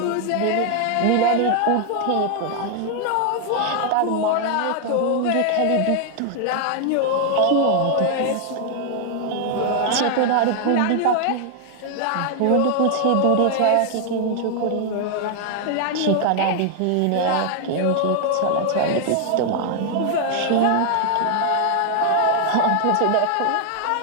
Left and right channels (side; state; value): both; different; correlation 0.00